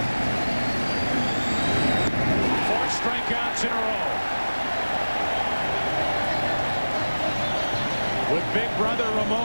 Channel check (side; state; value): both; inverted; correlation -1.00